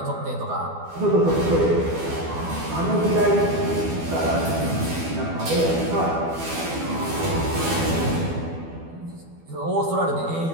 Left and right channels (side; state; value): left; late; 12 ms